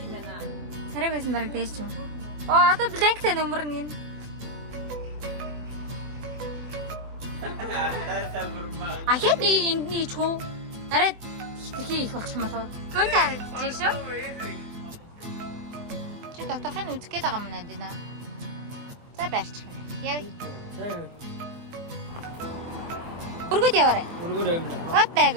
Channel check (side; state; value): left; late; 24 ms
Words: Сарай байсан бараг дээш ч юм. Одоо бланктай нөмөр нь. Ахад нэг эндний чуу. Арай хитрхи их болчих юм болов. Гүн харагдаж шүү. Чи доторхын үзэх гээд байгаа юм наа дина. За барьчих байна. Яа. Өргөд яваарай. Өргөд явна. Хатайг